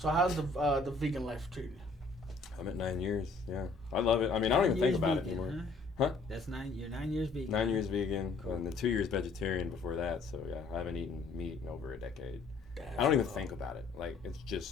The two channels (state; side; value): quieter; right; 3.9 dB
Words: how's the vegan life treating you? I'm at 9 years. Yeah, I love it. I mean, I don't even think about it vegan, anymore. Huh? Huh? That's 9. You're 9 years vegan. 9 years vegan, and then 2 years vegetarian before that. So yeah, I haven't eaten meat in over a decade. I don't even think about it. Like it's